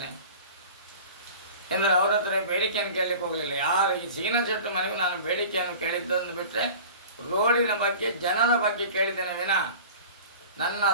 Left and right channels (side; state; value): both; inverted; correlation -0.40